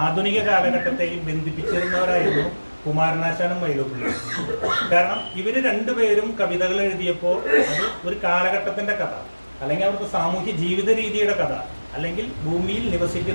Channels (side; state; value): both; inverted; correlation -1.00